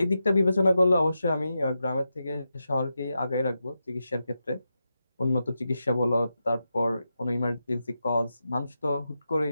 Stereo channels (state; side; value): inverted; both; correlation -0.88